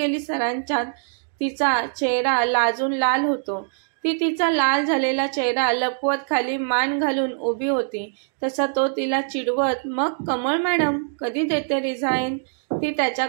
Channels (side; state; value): left; silent; digital silence